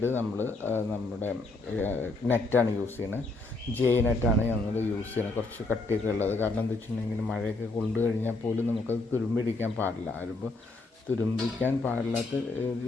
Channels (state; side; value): quieter; right; 3.2 dB